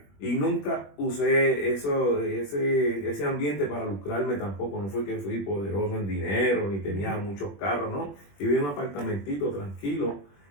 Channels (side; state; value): right; late; 21 ms